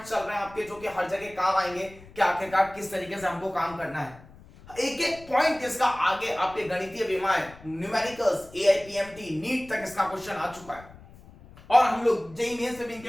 चल रहे हैं आपके, जो कि हर जगह काम आएंगे कि आखिरकार किस तरीके से हमको काम करना है। एक एक पॉइंट इसका आगे आपके गणितीय विमाएं, न्यूमेरिकल्स, एआईपीएमटी, नीट तक इसका क्वेश्चन आ चुका है, और हम लोग जेईई मेंस से भी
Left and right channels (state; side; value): noise; left; rumble, 21 dB below the sound